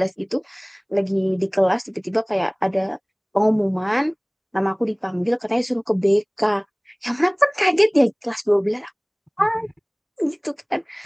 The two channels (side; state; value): both; identical; correlation 1.00